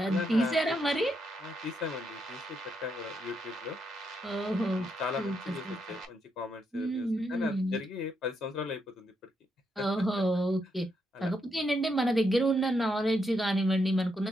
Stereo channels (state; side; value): normal; both; correlation 0.79